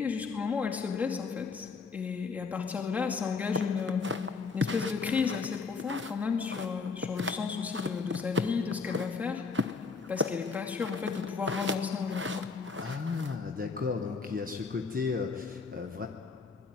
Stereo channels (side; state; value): right; quieter; 4.8 dB